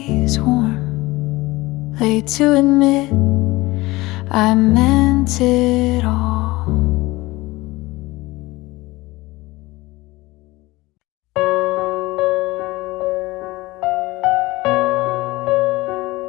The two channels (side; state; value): right; quieter; 20.5 dB